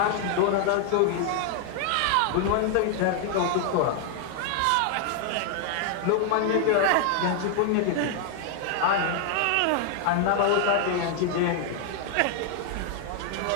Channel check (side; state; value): both; different; correlation 0.00